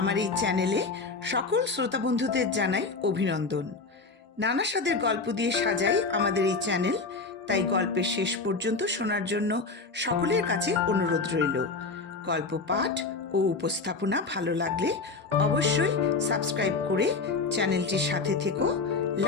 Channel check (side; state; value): right; quieter; 4.0 dB